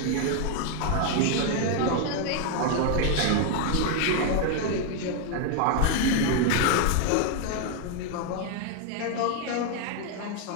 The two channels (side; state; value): both; different; correlation 0.01